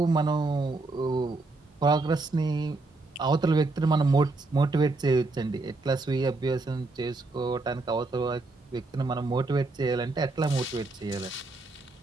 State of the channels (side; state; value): left; quieter; 3.3 dB